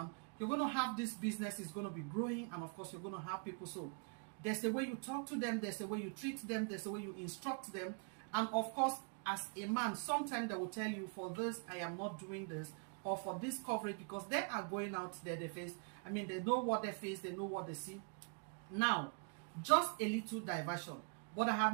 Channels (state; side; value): quieter; left; 39.2 dB